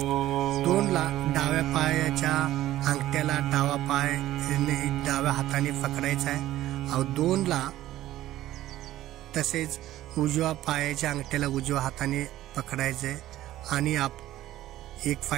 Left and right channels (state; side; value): quieter; left; 14.4 dB